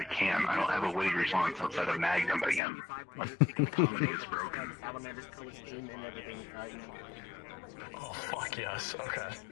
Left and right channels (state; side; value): drops out; right; at 2.6 s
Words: can't. I don't have a weight response outside of Magnum, but again, my comedy is broken. Salamander's costume and everything. Oh, fuck yes. Okay.